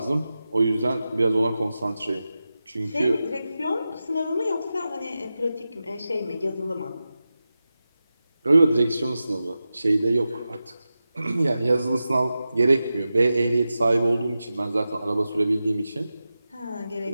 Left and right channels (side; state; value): both; inverted; correlation -0.93